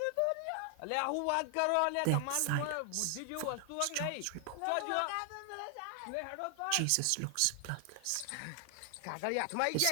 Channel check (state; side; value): different; both; correlation 0.00